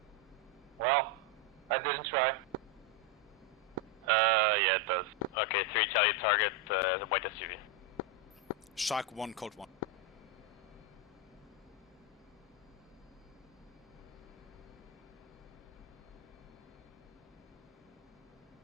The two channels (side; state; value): both; normal; correlation 0.04